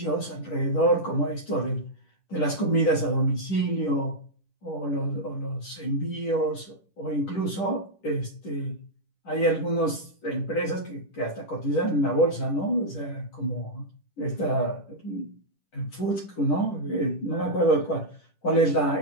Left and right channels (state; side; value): late; right; 10 ms